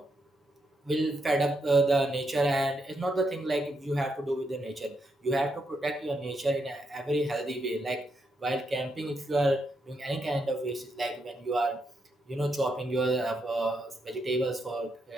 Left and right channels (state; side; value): normal; both; correlation 0.80